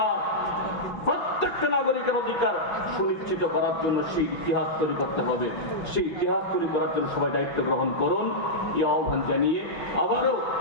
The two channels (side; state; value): right; late; 6.2 ms